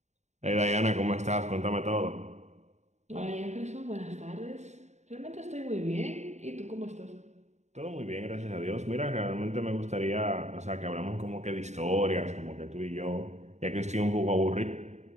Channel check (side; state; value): left; late; 0.33 ms